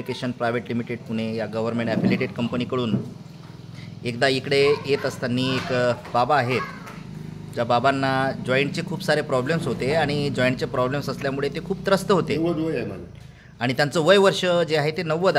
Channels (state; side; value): identical; both; correlation 1.00